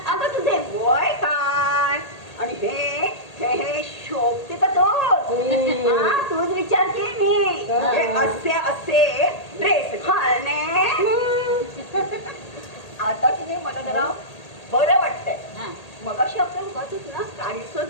अगं तुझे वय काय आणि हे शोभते का तूच विचारते मी. हे असे ड्रेस घालणे आता की मला जरा बरं वाटतंय. हा. मग अशी आपण बघतच ना, काळीचं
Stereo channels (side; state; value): right; late; 1.8 ms